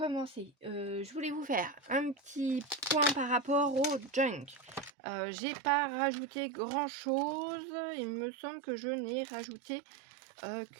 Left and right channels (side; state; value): left; drops out; at 4.9 s